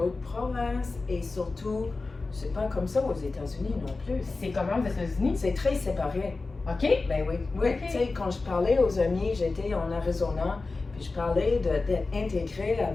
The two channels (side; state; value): right; quieter; 3.7 dB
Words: provinces et surtout, c'est pas comme ça aux États-Unis non plus. C'est comment aux États-Unis? C'est très séparé. OK? Ben oui, oui. Ok. Tu sais, quand je parlais aux amis, j'étais en Arizona, puis je parlais d'être intégré